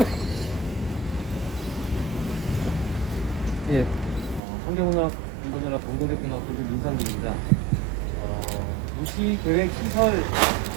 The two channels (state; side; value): drops out; left; at 4.4 s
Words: 예, 환경문화 공동연합 공동대표 민상빈입니다. 도시계획시설,